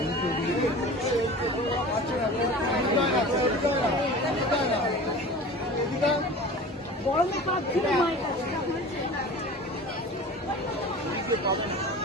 গরমে কাঁদছিল মায়ের কাছে।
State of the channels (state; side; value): normal; both; correlation 0.38